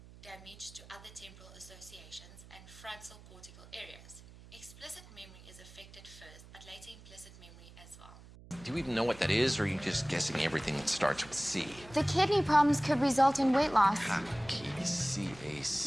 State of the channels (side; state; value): right; noise; hum, 20 dB below the sound